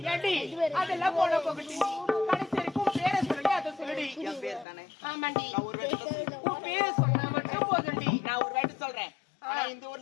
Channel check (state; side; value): drops out; right; at 4.7 s